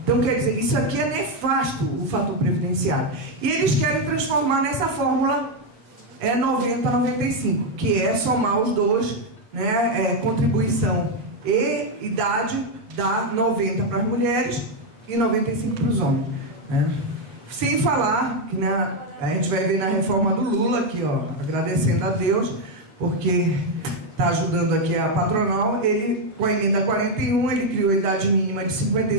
Então, quer dizer, isso aqui é nefasto, o fator previdenciário. E eles querem transformar nessa fórmula 90-95, que é somar os dois, né, contribuição e idade, dá 90 para as mulheres e 95 para os homens, né? Sem falar que, né, a gente vai ver na reforma do Lula aqui, ó, agradecendo a Deus, porque está ajudando aqui a patronal. Ele, com a emenda 41, ele criou a idade mínima de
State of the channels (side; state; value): left; late; 9.0 ms